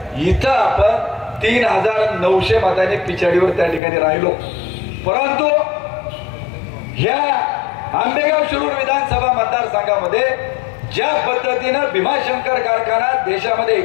इथं आपण 3900 मतांनी पिछाडीवर त्या ठिकाणी राहिलो. परंतु ह्या आंबेगाव शिरूर विधानसभा मतदारसंघामध्ये ज्या पद्धतीनं भीमाशंकर कारखाना देशामध्ये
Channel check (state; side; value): drops out; right; at 3.8 s